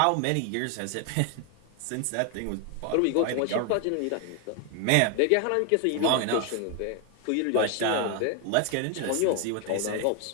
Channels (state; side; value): different; both; correlation 0.01